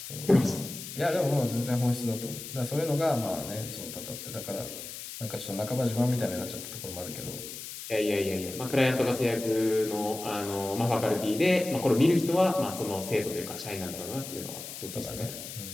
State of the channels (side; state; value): left; noise; hiss, 10 dB below the sound